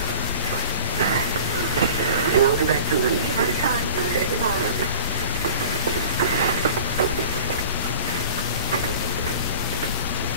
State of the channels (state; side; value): inverted; both; correlation -0.37